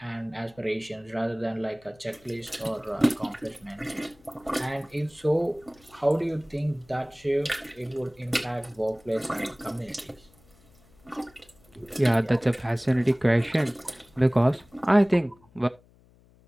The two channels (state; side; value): noise; left; hum, 29 dB below the sound